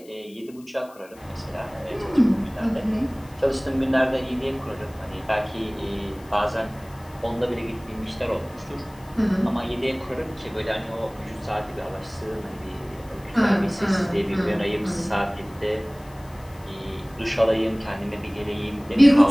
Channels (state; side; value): noise; left; hiss, 26 dB below the sound